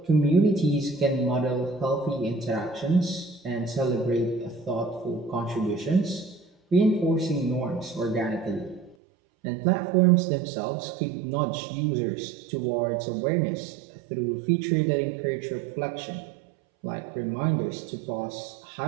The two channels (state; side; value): drops out; left; at 9.0 s